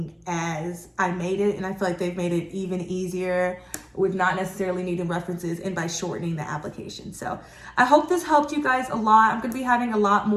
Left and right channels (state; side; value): identical; both; correlation 1.00